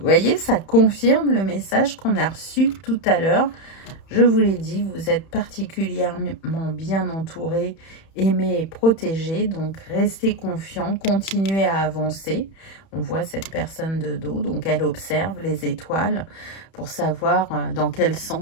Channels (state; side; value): late; right; 31 ms